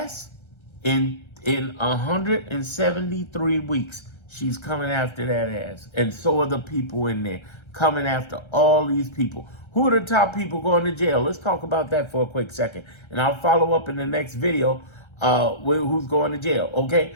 in 173 weeks, she's coming after that ass. And so are the people in there coming after all these people. Who are the top people going to jail? Let's talk about that for a quick second. And I'll follow up in the next video with who's going to jail, okay?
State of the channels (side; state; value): right; late; 1.3 ms